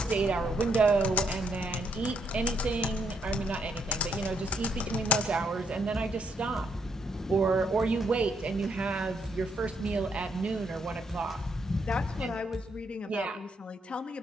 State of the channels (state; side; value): normal; both; correlation 0.74